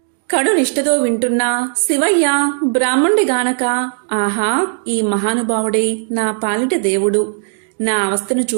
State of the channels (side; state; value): left; silent; 58 dB below the other